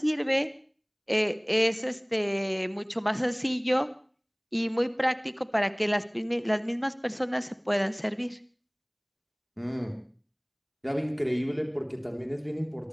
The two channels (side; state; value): both; identical; correlation 1.00